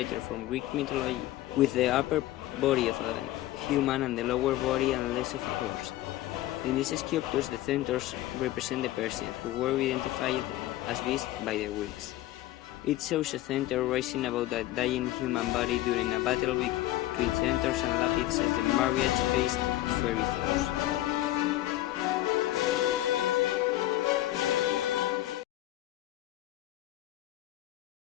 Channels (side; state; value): right; quieter; 15.3 dB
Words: from Greek mythology with the upper body of a human and the lower body and legs of a horse. In these sculptures, the centaurs represent the Persians, who were identified as beasts by the Greeks. It shows a centaur rising above a dying human body during a battle between centaurs and Lapids as the marriage faced fairy foes.